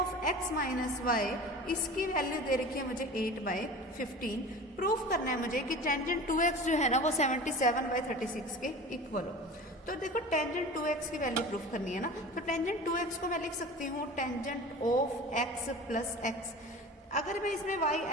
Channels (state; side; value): normal; both; correlation 0.36